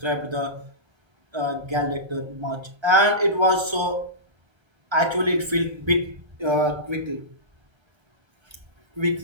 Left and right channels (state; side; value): late; left; 1.3 ms